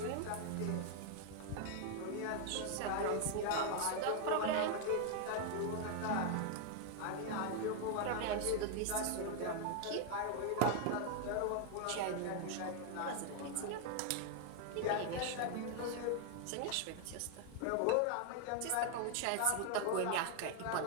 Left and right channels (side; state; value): both; different; correlation 0.00